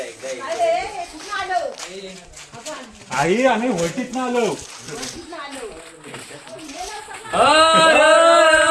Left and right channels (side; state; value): both; identical; correlation 1.00